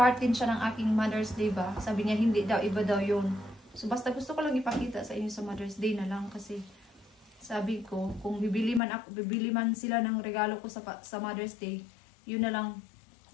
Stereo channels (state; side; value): drops out; right; at 8.8 s